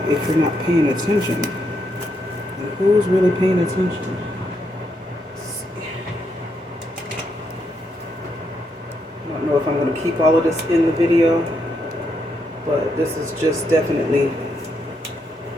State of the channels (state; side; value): normal; both; correlation 0.79